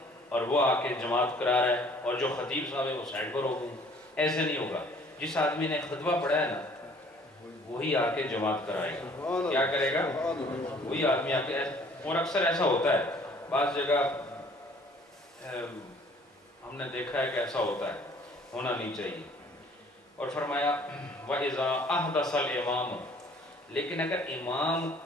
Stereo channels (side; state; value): both; normal; correlation 0.55